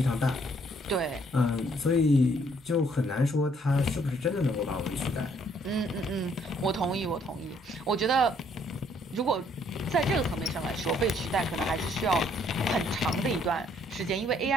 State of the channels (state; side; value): normal; both; correlation 0.66